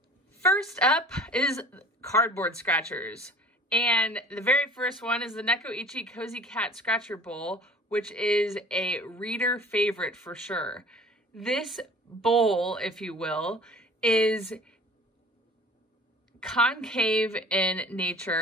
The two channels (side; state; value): both; normal; correlation 0.46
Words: First up is cardboard scratchers. And the very first one is the Necoichi Cozy Cat Scratcher Bowl, which is a reader favorite for sure. This bowl, if you will, is concave in